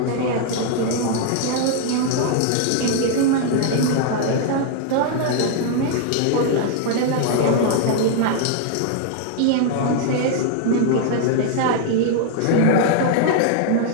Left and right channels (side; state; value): both; different; correlation 0.00